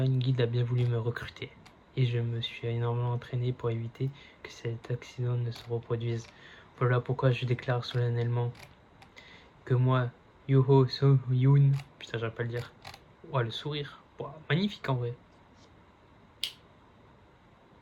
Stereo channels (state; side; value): identical; both; correlation 1.00